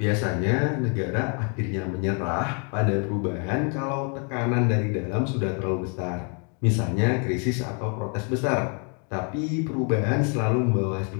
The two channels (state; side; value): quieter; right; 37.2 dB